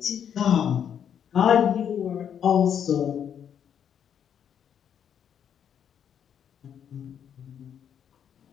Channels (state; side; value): quieter; right; 8.6 dB